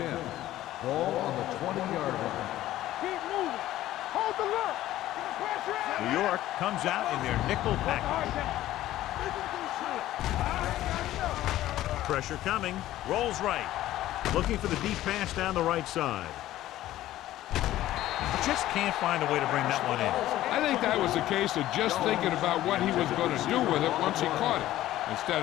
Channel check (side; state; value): right; quieter; 14.4 dB